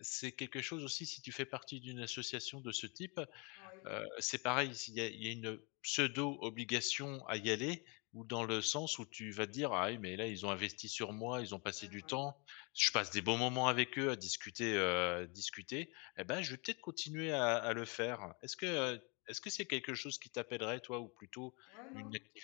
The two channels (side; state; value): right; quieter; 31.6 dB